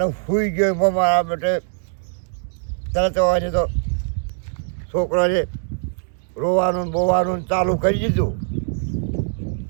સૂઈ ગયો એમાં મારા માટે તરત આવવાની તો છોકરાને રોવાનું ને બોવાનું ચાલુ કરી દીધું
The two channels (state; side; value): silent; left; digital silence